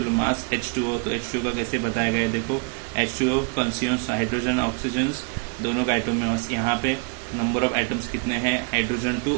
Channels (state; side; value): quieter; left; 37.2 dB